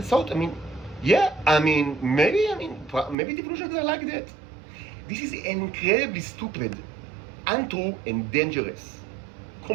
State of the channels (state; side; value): drops out; left; at 3.2 s